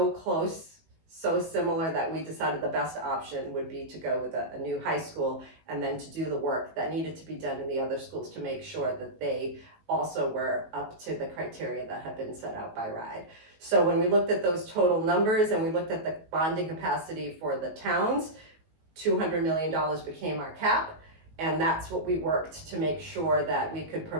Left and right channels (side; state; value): left; late; 19 ms